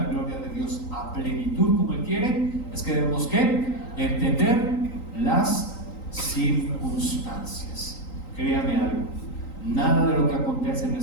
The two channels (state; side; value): late; right; 3.9 ms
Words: gloria de Dios a plenitud como Él quiere, es que debemos que entender las circunstancias. Créame algo, nada de lo que acontece en